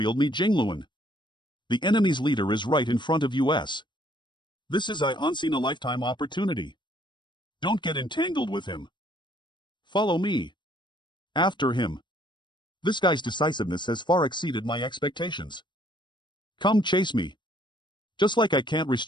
Ni Jingluan. The enemy's leader is right in front of us. This is a once-in-a-lifetime opportunity. Don't get entangled with him. Follow me. After him. This guy's decisiveness has far exceeded my expectations. Come chase me. Just like I can't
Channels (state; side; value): late; right; 0.22 ms